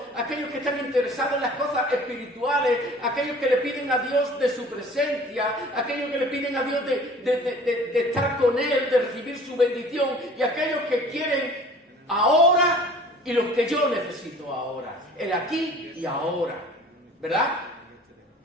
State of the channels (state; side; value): normal; both; correlation 0.48